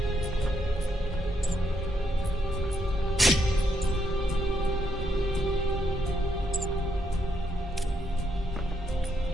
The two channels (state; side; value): normal; both; correlation 0.77